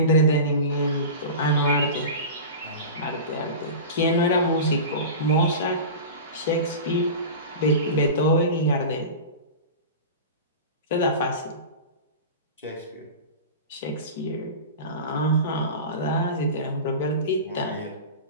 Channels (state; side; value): inverted; both; correlation -0.30